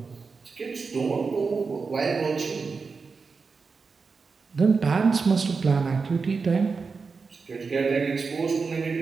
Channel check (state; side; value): quieter; left; 4.8 dB